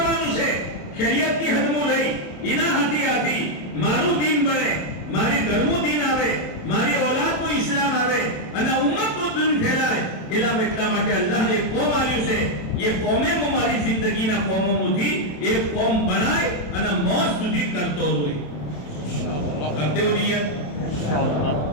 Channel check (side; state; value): right; late; 27 ms